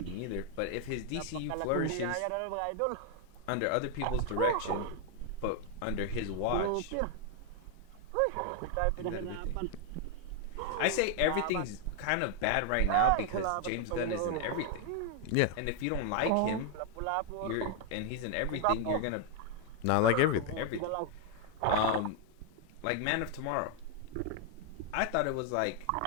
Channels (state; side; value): different; both; correlation 0.00